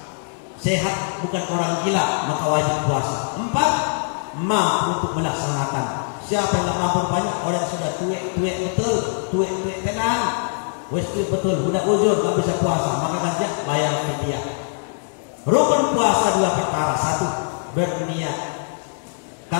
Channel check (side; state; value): right; silent; 64 dB below the other